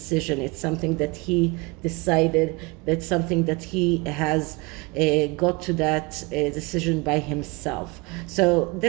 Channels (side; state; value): left; quieter; 26.3 dB